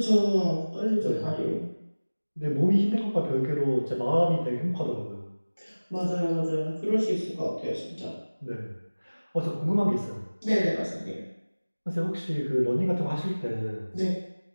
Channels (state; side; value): inverted; both; correlation -1.00